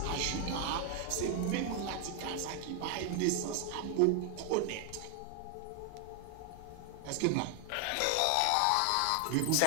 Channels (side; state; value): both; different; correlation 0.00